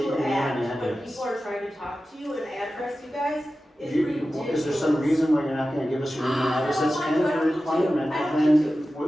you your name act and when address? people are trying to talk to you and address you guys is ridiculous. Is there some reason why you're not gonna give us your name and address? That's kind of a requirement, I don't then,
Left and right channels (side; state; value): both; normal; correlation 0.94